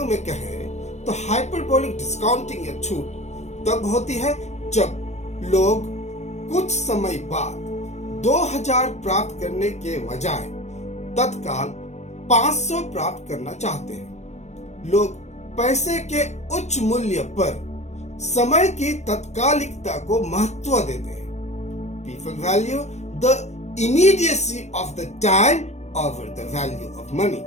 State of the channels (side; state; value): right; late; 0.33 ms